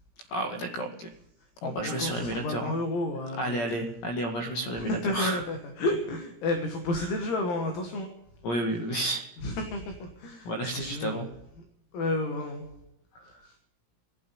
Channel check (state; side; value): late; right; 17 ms